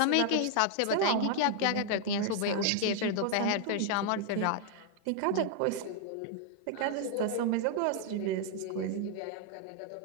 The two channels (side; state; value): both; different; correlation 0.00